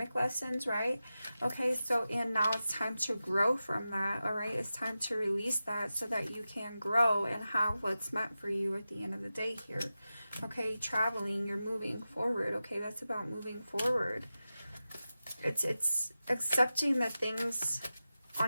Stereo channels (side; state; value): both; inverted; correlation -0.93